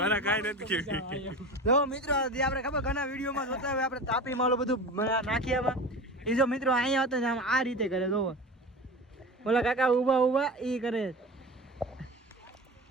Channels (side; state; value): both; normal; correlation 0.32